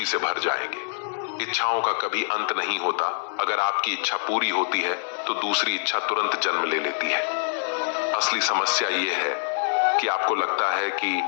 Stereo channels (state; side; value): silent; right; 60 dB below the other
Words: से भर जाएंगे। इच्छाओं का कभी अंत नहीं होता। अगर आपकी इच्छा पूरी होती है तो दूसरी इच्छा तुरंत जन्म ले लेती है। असली समस्या यह है कि आपको लगता है कि